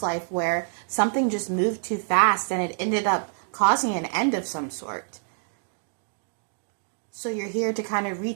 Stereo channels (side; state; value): left; silent; digital silence